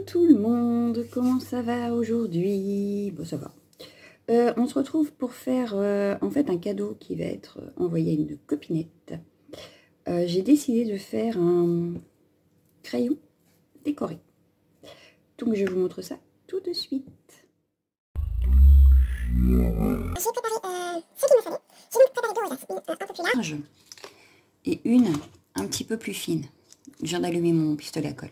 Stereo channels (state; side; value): identical; both; correlation 1.00